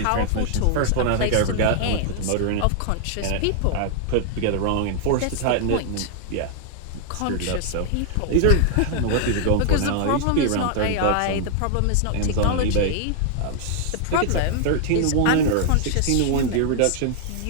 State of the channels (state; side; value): different; both; correlation 0.00